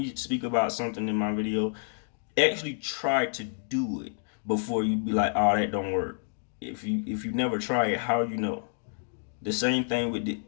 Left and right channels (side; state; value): right; silent; digital silence